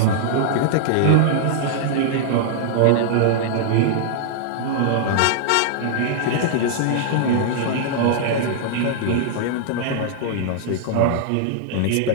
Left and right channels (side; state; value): both; different; correlation -0.01